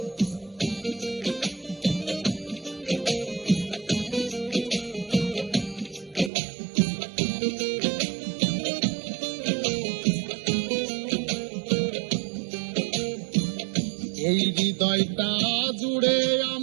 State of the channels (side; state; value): left; drops out; at 6.3 s